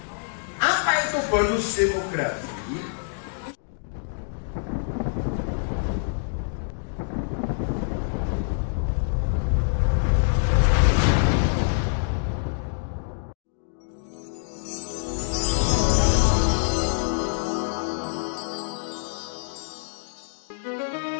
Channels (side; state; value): right; silent; digital silence